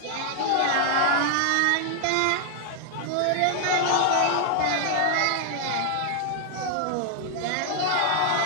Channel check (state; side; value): different; both; correlation 0.00